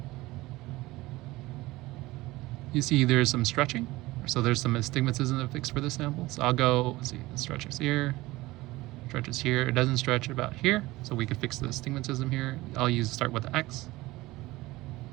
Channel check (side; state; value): left; quieter; 19.3 dB